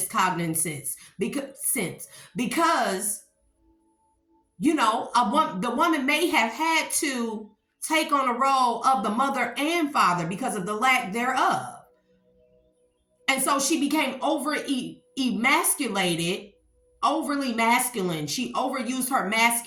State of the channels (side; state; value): both; identical; correlation 1.00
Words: because the woman may have had to take on a role of the mother and father because of the lack thereof. And so she became emasculated, overly masculine. She overused her